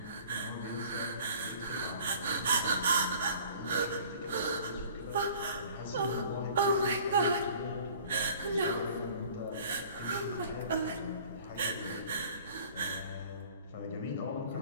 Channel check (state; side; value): inverted; both; correlation -0.49